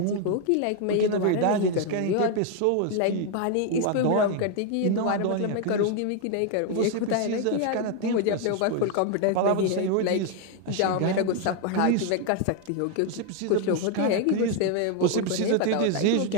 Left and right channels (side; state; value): both; different; correlation 0.00